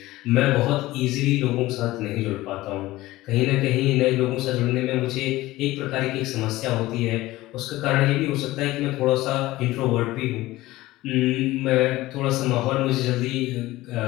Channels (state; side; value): quieter; right; 17.7 dB